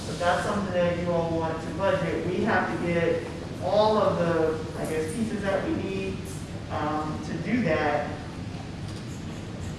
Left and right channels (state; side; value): identical; both; correlation 1.00